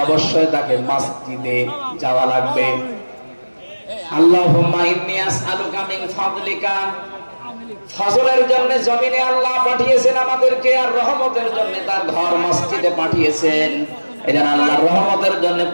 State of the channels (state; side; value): inverted; both; correlation -1.00